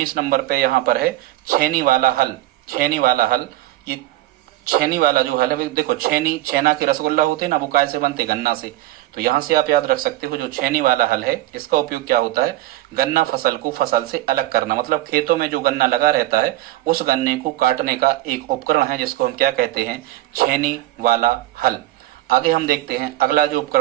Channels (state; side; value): quieter; left; 16.0 dB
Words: नंबर पे यहाँ पर है छेनी वाला हल। छेनी वाला हल, ये छेनी वाला जो हल है, देखो छेना के रसगुल्ला होते हैं ना, वो काय से बनते? गन्ना से। तो यहां से आप याद रख सकते हो, जो छेनी वाला हल है इसका उपयोग क्या होता है? गन्ना फसल को फसल से अलग करना। मतलब खेतों में जो गन्ना लगा रहता है उस गन्ने को काटने का एक उपकरण है जिसको हम क्या कहते हैं? छेनी वाला हल। आगे हम देखते हैं अगला जो